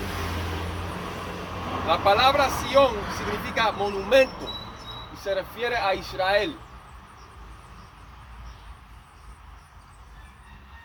La palabra Sión significa monumento y se refiere a Israel.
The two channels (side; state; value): both; identical; correlation 1.00